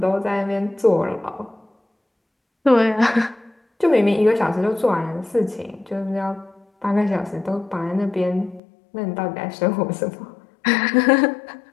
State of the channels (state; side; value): drops out; right; at 8.6 s